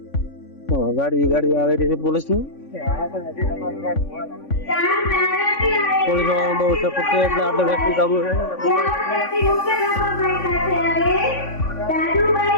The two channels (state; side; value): late; right; 3.5 ms